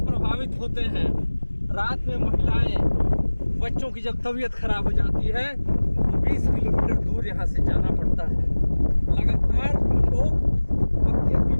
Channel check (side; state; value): both; inverted; correlation -1.00